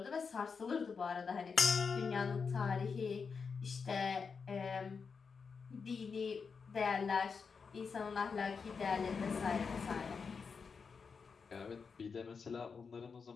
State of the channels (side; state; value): right; quieter; 5.5 dB